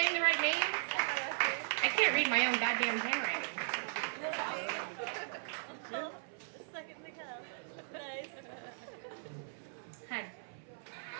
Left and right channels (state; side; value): silent; left; 53 dB below the other